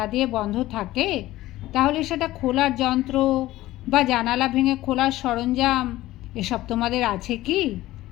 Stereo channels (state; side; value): quieter; right; 16.3 dB